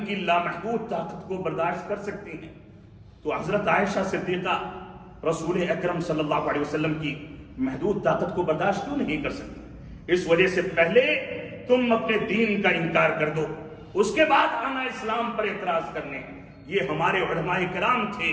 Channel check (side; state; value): both; identical; correlation 1.00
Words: کی لامحدود طاقت کو برداشت کر سکتی ہیں، تو حضرت عائشہ صدیقہ رسول اکرم صلی اللہ علیہ وسلم کی محدود طاقت کو برداشت کیوں نہیں کر سکتی؟ اس وجہ سے پہلے تم اپنے دین کا انکار کر دو، اس کے بعد آنا اسلام پر اعتراض کرنے۔ یہ ہمارے علماء کرام